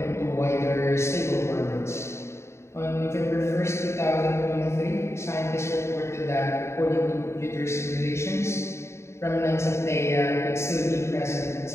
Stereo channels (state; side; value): late; right; 0.13 ms